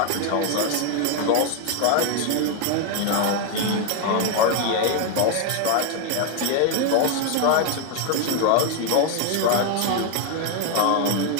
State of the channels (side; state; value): both; different; correlation 0.01